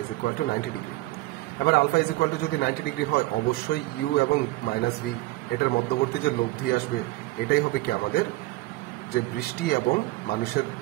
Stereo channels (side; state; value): left; quieter; 19.3 dB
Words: is equal to 90 degree. এবার আলফা ইজ ইকুয়াল টু যদি 90 ডিগ্রি হয়, অবশ্যই ইউ এবং -v এটার মধ্যবর্তী যে লব্ধি আসবে এটাই হবে কি আমাদের যে বৃষ্টি এবং মানুষের